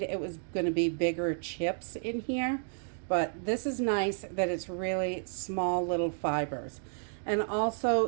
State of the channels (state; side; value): silent; left; digital silence